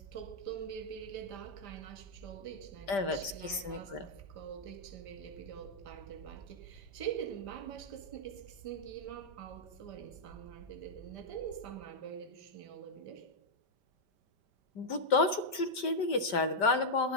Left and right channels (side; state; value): right; late; 5.1 ms